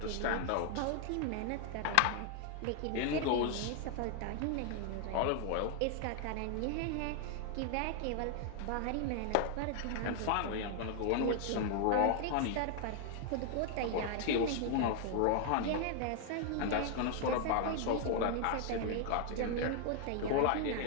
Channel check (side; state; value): both; different; correlation 0.00